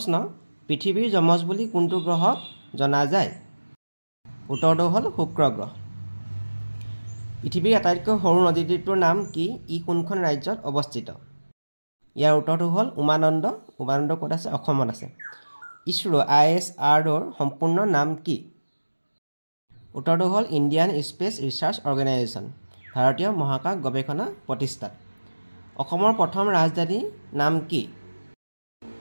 পৃথিৱীৰ যমজ বুলি কোনটো গ্ৰহক জনা যায় উত্তৰটো হ'ল শুক্ৰ গ্ৰহ পৃথিৱীৰ আটাইতকৈ সৰু নদীদ্বীপটোৰ নাম কি ই কোনখন ৰাজ্যত অৱস্থিত ইয়াৰ উত্তৰটো হ'ল উমানন্দ ক'ত আছে অসমত আছে ইছৰো ISROৰ সম্পূৰ্ণ নাম কি উত্তৰটো হ'ল ইণ্ডিয়ান স্পেচ ৰিচাৰ্চ অৰ্গেনাইজেশ্যন ভাৰতীয় মহাকাশ গৱেষণা প্ৰতিষ্ঠান অসমৰ প্ৰথম ৰাজধানীৰ নাম কি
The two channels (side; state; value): both; inverted; correlation -1.00